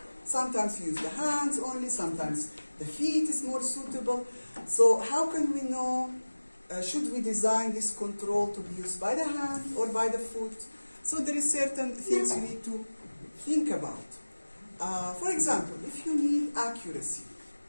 sometimes you use the hands only, sometimes the feet is more suitable. So how can we know, should we design this control to be used by the hand or by the foot? So there is certain things you need to think about. For example, if you need accuracy,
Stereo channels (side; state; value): both; inverted; correlation -1.00